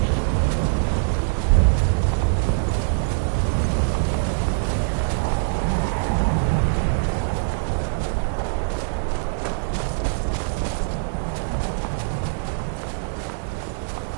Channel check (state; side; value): silent; left; digital silence